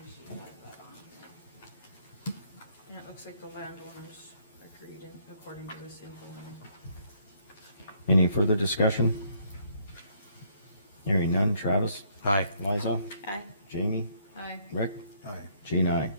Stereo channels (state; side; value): inverted; both; correlation -0.67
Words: she had that on. And it looks like the landowners agreed in, according to this info. Any further discussion? Hearing none. Travis? Aye. Liza? Aye. Jamie? Aye. Rick? Aye. Jean, aye.